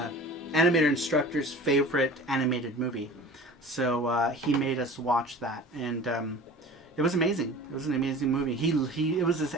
instructor's favorite animated movie. So he made us watch that, and it was amazing. It was an amazing movie. It was his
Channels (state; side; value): normal; both; correlation 0.40